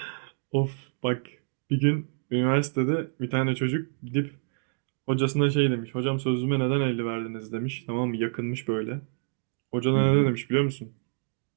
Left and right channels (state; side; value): silent; left; digital silence